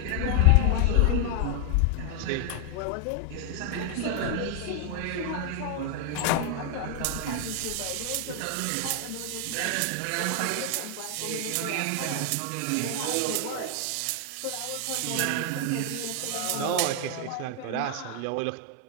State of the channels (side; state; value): both; different; correlation 0.00